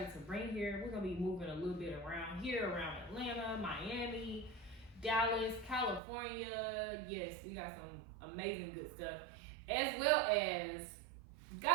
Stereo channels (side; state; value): left; drops out; at 6.0 s